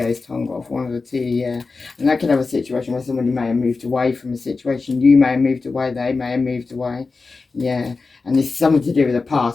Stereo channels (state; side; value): quieter; right; 4.1 dB